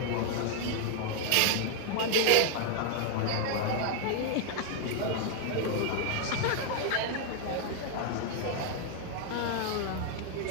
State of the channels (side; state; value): both; different; correlation 0.00